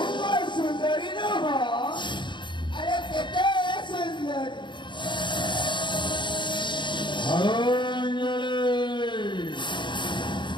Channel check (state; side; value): late; right; 0.23 ms